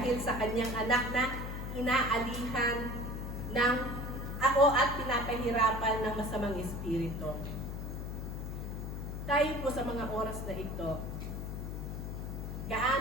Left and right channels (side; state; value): left; noise; hum, 5 dB below the sound